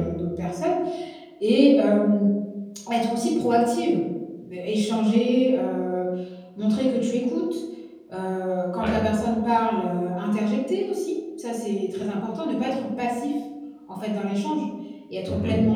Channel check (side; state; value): both; identical; correlation 1.00